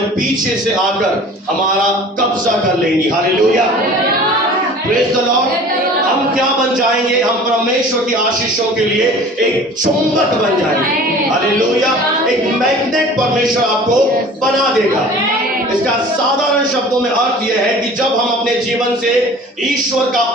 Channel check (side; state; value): both; normal; correlation 0.44